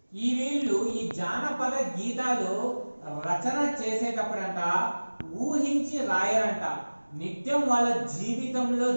ఈ వీళ్ళు ఈ జానపద గీతాలు రచన చేసేటప్పుడంట ఊహించి రాయరంట. నిత్యం వాళ్ళ జీవితంలో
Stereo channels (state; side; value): inverted; both; correlation -1.00